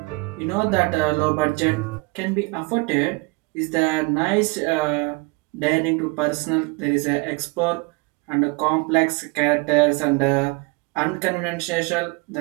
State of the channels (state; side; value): quieter; left; 27.1 dB